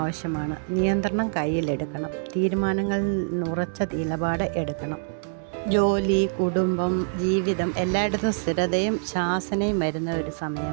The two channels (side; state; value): left; silent; digital silence